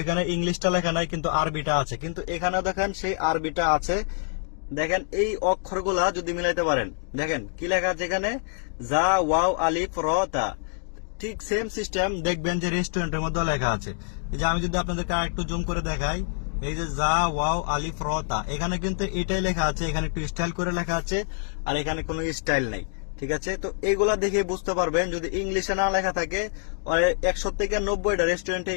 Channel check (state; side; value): silent; right; 61 dB below the other